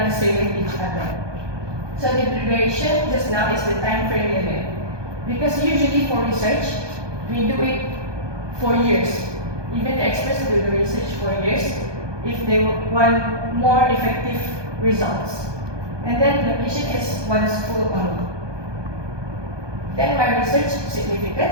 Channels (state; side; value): late; left; 1.2 ms